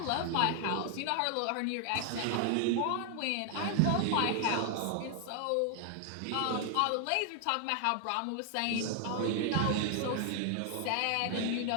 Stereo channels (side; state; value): both; different; correlation 0.00